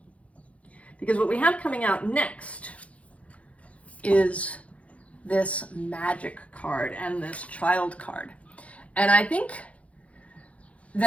Because what we have coming out next is this magic card and this child card. And I think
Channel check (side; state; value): right; late; 0.064 ms